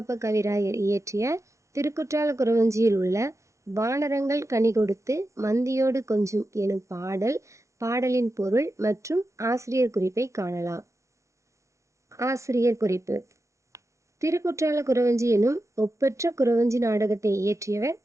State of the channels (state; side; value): late; left; 0.15 ms